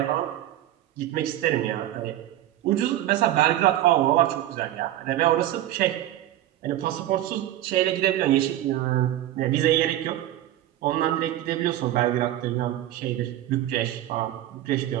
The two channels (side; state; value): left; quieter; 13.4 dB